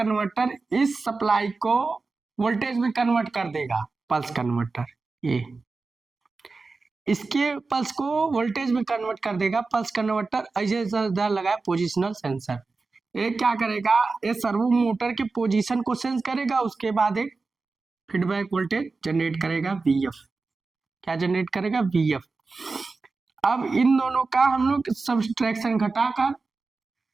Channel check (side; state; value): left; quieter; 4.0 dB